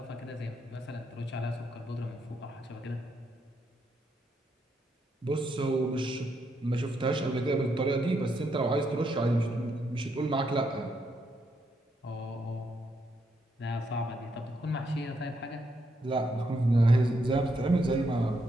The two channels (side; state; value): both; normal; correlation 0.78